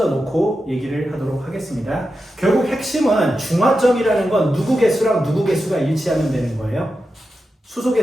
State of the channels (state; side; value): normal; both; correlation 0.90